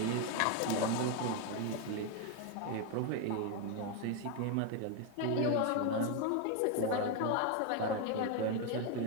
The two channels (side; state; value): both; different; correlation 0.01